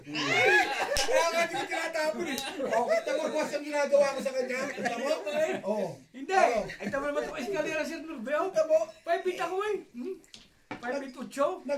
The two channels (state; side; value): identical; both; correlation 1.00